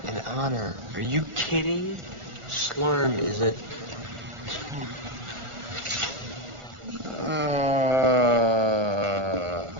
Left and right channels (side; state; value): left; late; 1.4 ms